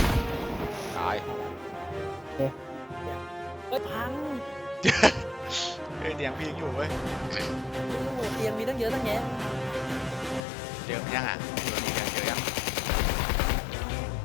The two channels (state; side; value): drops out; right; at 10.4 s